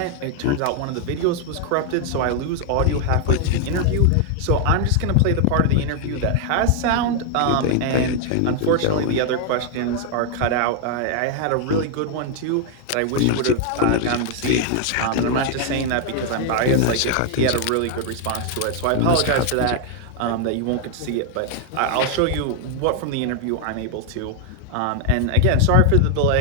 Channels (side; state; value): both; different; correlation 0.00